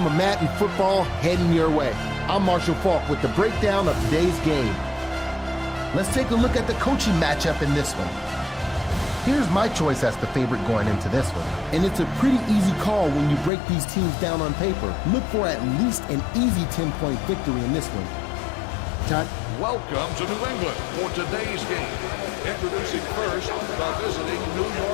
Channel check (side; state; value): right; drops out; at 13.5 s